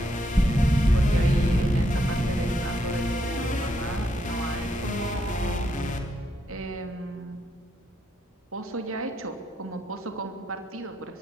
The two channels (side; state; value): both; normal; correlation 0.79